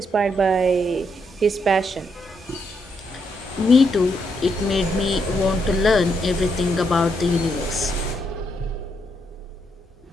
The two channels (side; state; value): both; normal; correlation 0.78